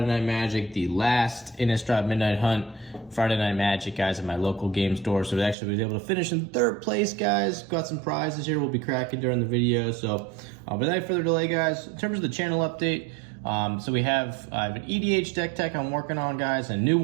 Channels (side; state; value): left; drops out; at 5.6 s